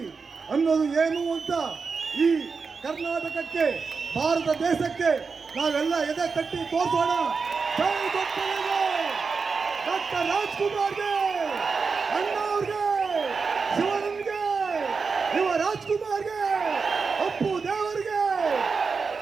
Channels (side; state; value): left; quieter; 4.9 dB